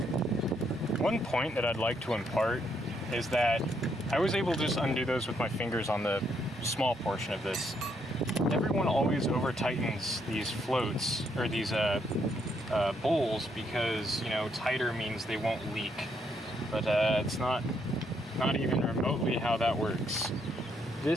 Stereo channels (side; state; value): both; normal; correlation 0.74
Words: One point that I'd like to impart is that I was able to just undo those with my fingers on the small portion of this. Everyone always over tightens these floats, or these bowls, because, you know, tighter means they won't leak. But it's not even remotely how that works.